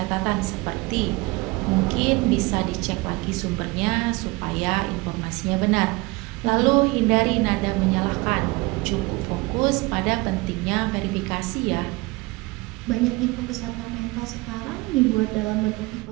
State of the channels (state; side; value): quieter; left; 24.0 dB